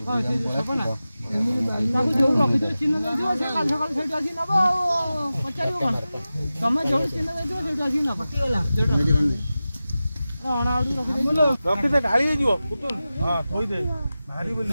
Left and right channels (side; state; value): both; inverted; correlation -0.95